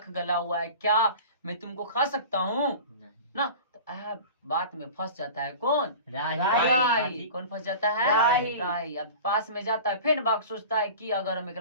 गला हुआ है, क्या मैं तुमको खा सकता हूँ नहीं। ना। तो बात में फंस जाता है कौन, राही। कौन फंस जाता है, राही। राही। अब पास में जाता है, फिर बाघ सोचता है कि अगर हम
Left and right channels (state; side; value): inverted; both; correlation -0.37